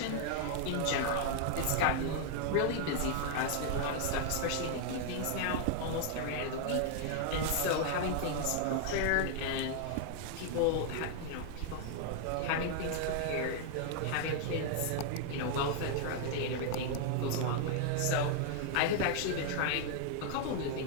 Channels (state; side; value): different; both; correlation 0.00